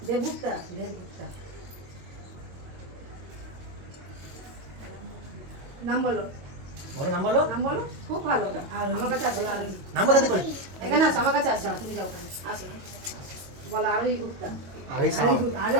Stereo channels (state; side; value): late; left; 22 ms